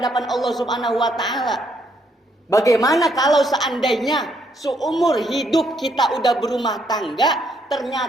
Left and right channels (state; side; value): normal; both; correlation 0.72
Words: Allah Subhanahu wa ta'ala. Bagaimana kalau seandainya seumur hidup kita udah berumah tangga,